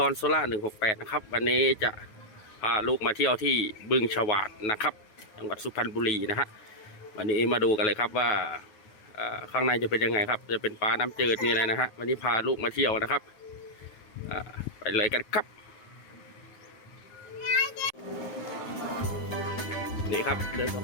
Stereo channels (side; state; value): right; late; 9.3 ms